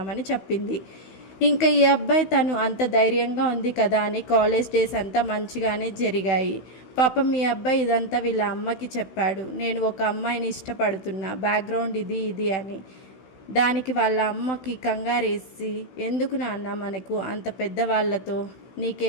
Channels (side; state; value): right; late; 16 ms